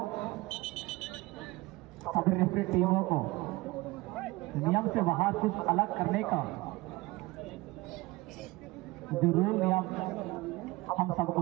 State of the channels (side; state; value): left; quieter; 21.2 dB